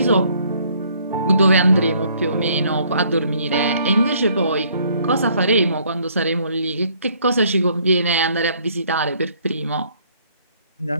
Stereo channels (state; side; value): inverted; both; correlation -0.63